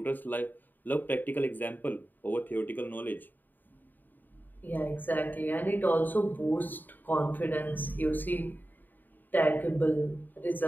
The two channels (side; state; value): right; late; 0.089 ms